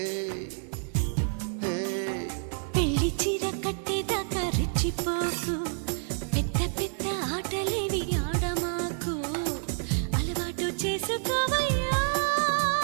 పెళ్లి చీర కట్టేదాకా రెచ్చిపోకు పెద్ద పెద్ద ఆటలేవి ఆడమాకు అలవాటు చేసుకోవయ్యా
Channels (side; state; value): left; silent; 59 dB below the other